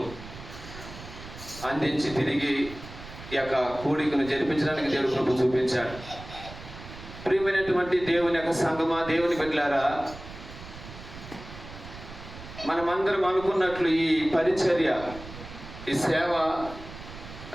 అందించి తిరిగి ఈ యొక్క కూడికను జరిపించడానికి దేవుడు కృప చూపించాడు. ప్రియమైనటువంటి దేవుని యొక్క సంఘమా, దేవుని బిడ్డలారా, మనమందరం అనుకున్నట్లు ఈ పరిచర్య, ఈ సేవ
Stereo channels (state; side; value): noise; right; rumble, 14 dB below the sound